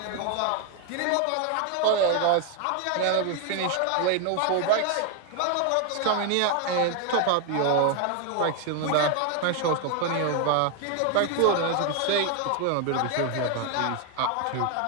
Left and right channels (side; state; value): both; different; correlation 0.01